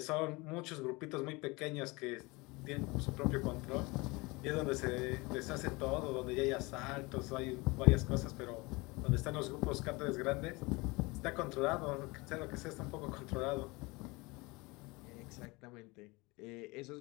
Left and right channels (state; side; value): quieter; right; 24.6 dB